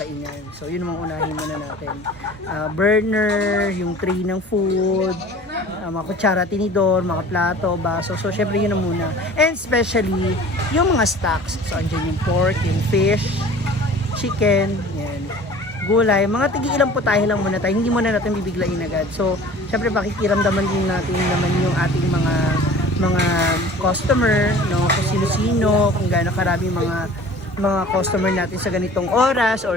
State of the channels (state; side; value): normal; both; correlation 0.44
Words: So, yun ang mga unahin muna natin. Burner, yung tray ng food, mga kutsara, tinidor, mga plato, baso. So, syempre yun na muna. And especially, yung mga stocks. So, andyan yung pork, yung fish, chicken, yan, gulay. Mga tigi-ilang putahe lang muna tayo. Hindi muna natin bibiglain agad. So, syempre, pakikiramdaman din natin naman yung ating mga customer, no, kung sino-sino, kung gaano karami mga customer natin sa ganitong oras